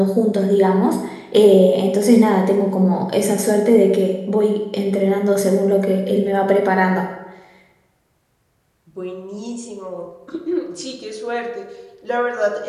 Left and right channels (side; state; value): both; identical; correlation 1.00